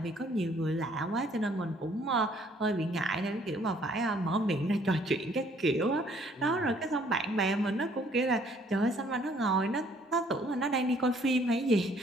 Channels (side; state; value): both; normal; correlation 0.62